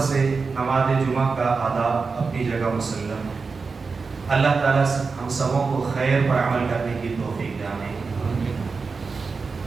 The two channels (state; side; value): quieter; left; 4.6 dB